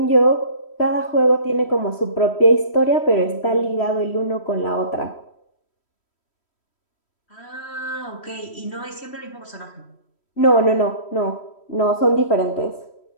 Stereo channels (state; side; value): late; right; 3.1 ms